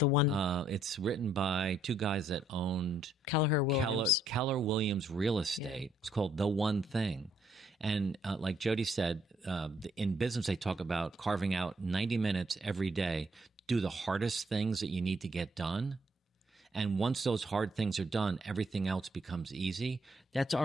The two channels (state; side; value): normal; both; correlation 0.70